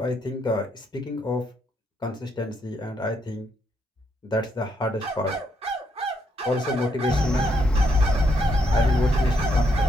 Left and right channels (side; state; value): both; normal; correlation 0.75